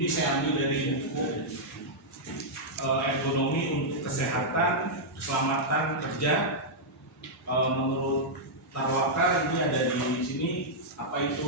saya ambil dari buku ergonomi untuk kesehatan, keselamatan kerja. Menurut Tarwaka ini ada di sini apa itu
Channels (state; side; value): normal; both; correlation -0.07